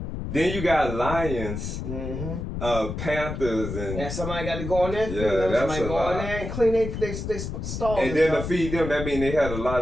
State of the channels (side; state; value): left; noise; rumble, 6 dB below the sound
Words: Then you got lions, panthers, and somebody got to go in there and feed them. Somebody go in there and clean they stalls. And then to feed them, that means they had a